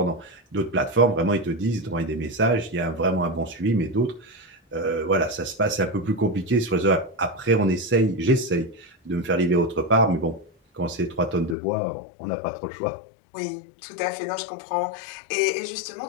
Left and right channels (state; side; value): drops out; right; at 11.6 s